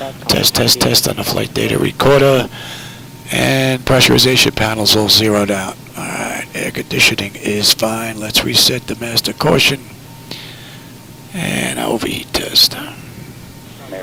Test, test, test on the flight data recorder. And pressurization panels all zeroed out. Alright, air conditioning is fine. Let's reset the master caution. And overheat test.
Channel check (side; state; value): both; identical; correlation 1.00